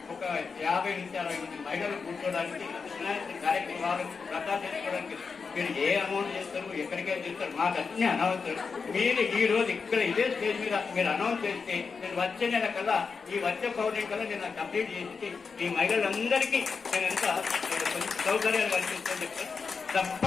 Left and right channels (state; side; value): quieter; right; 5.2 dB